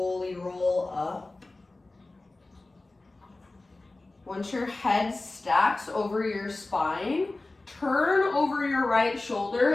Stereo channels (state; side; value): quieter; right; 3.1 dB